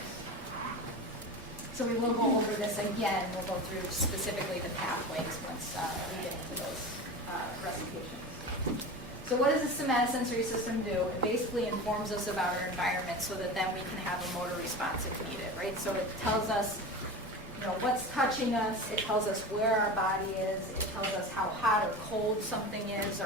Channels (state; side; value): normal; both; correlation 0.29